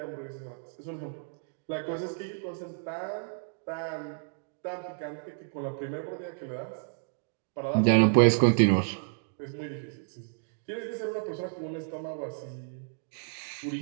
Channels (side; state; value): left; silent; digital silence